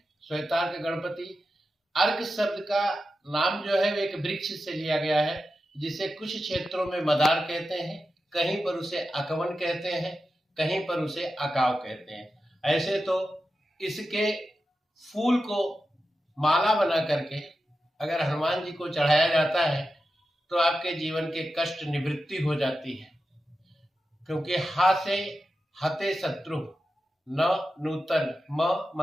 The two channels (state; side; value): normal; both; correlation 0.91